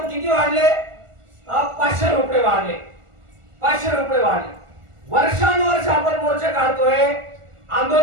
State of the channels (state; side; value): late; left; 1.4 ms